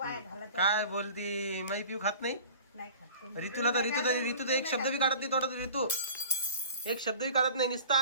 घालत. काय बोलती? माझी पिऊ खात नाही? नाही खात. रितूला तर रितू तर एक शब्द बी काढत नाही तोंडात. रितू एक शब्द बी काढत नाही,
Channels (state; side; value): inverted; both; correlation -0.41